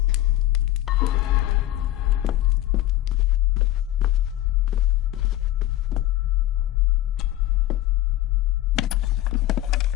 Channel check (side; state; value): right; quieter; 14.6 dB